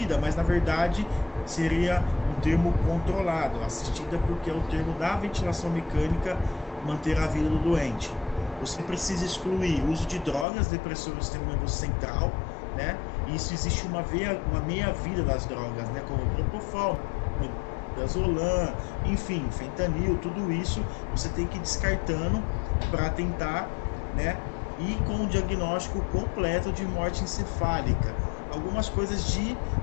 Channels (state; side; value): drops out; right; at 10.5 s